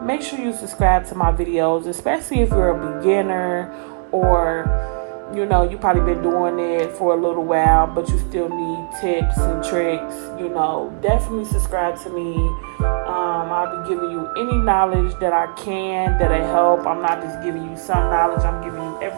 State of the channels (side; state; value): left; silent; digital silence